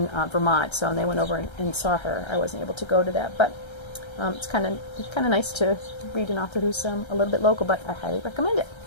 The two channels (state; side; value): late; right; 1.3 ms